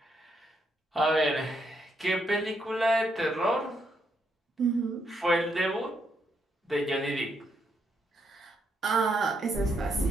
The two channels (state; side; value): normal; both; correlation 0.77